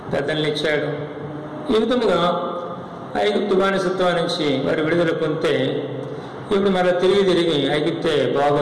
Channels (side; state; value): both; identical; correlation 1.00